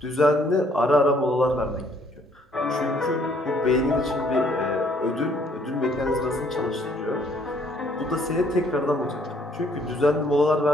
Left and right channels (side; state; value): both; normal; correlation 0.64